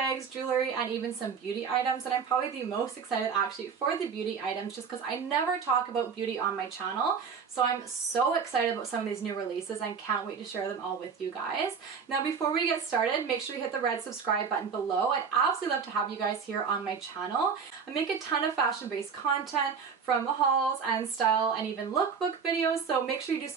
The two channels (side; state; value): left; quieter; 6.1 dB